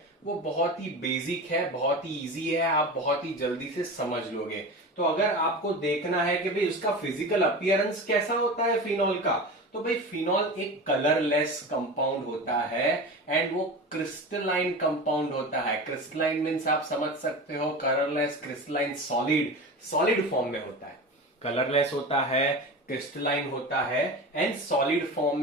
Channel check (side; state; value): both; normal; correlation 0.29